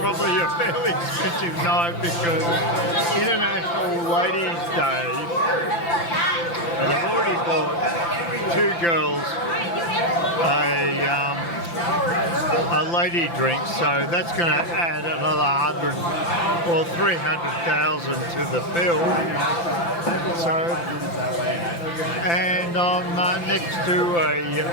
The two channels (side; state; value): right; late; 5.9 ms